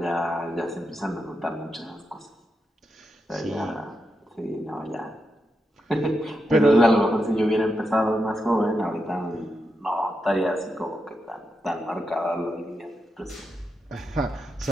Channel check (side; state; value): both; normal; correlation 0.86